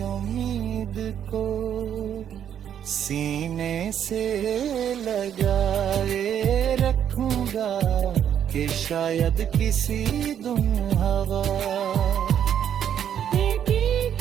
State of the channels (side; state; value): left; quieter; 9.3 dB